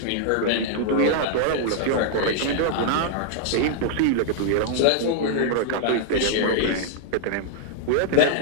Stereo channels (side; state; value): both; different; correlation -0.01